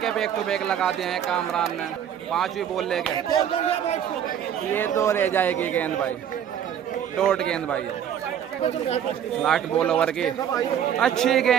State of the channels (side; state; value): left; quieter; 9.3 dB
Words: बैक टू बैक लगा दिए हैं कामरान ने। 5वीं बॉल लेके ये 2 रह जाएगी गेंद भाई, डॉट गेंद भाई है। लास्ट बॉल ओवर की, अच्छी